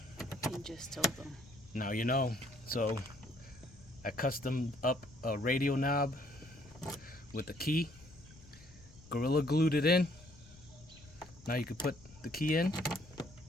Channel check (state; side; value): noise; left; rumble, 22 dB below the sound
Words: you just told them. Now you know. So I custom up a radio knob with a key, Gorilla glued it in. Now you can put the key in